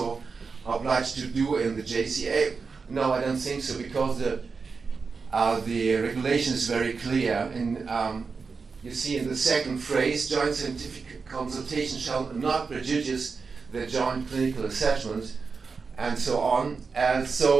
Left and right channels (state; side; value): quieter; left; 4.9 dB